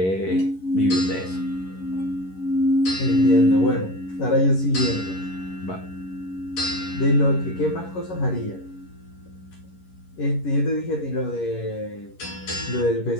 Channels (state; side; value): late; right; 11 ms